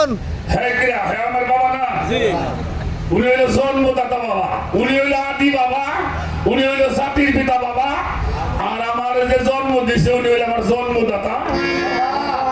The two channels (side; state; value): both; identical; correlation 1.00